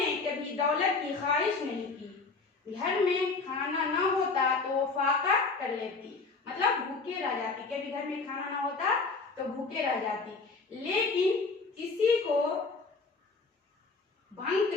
कभी दौलत की ख्वाहिश नहीं की। घर में खाना न होता तो वो फाका कर लेती, मतलब भूखे रह जाती। कभी घर में खाना ना होता तो भूखे रह जाती, लेकिन किसी को भंग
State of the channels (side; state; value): right; quieter; 4.2 dB